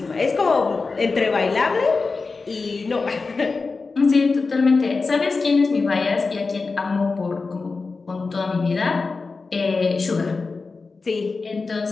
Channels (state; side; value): quieter; right; 4.2 dB